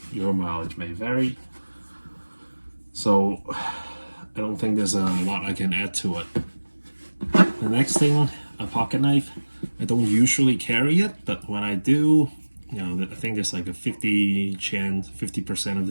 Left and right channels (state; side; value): inverted; both; correlation -1.00